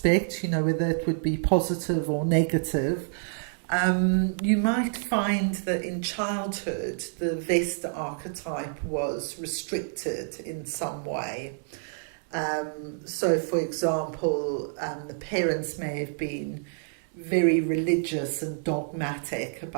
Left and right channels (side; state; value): left; silent; digital silence